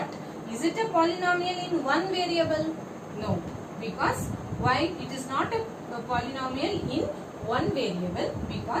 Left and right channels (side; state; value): both; identical; correlation 1.00